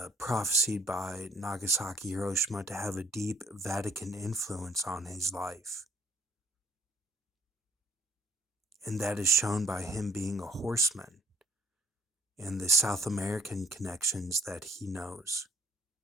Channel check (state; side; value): normal; both; correlation 0.59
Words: prophesied by Nagasaki, Hiroshima to have a deep Vatican influence on his life. And that is shown by him being a horseman and the South American connections that he knows,